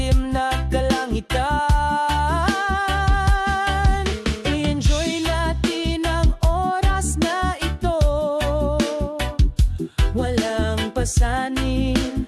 na kalangitan. I-enjoy natin ang oras na ito. Walang pasanin,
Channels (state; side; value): identical; both; correlation 1.00